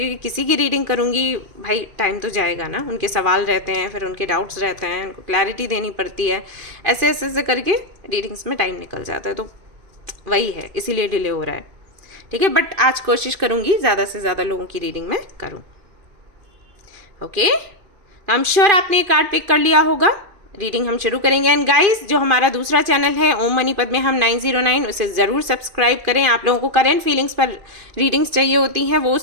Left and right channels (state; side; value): late; left; 2.6 ms